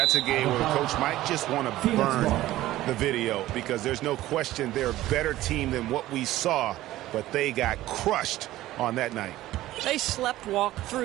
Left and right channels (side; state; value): left; quieter; 15.5 dB